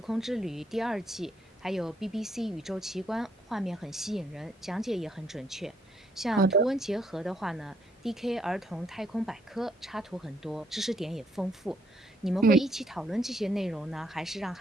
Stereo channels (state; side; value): normal; both; correlation 0.71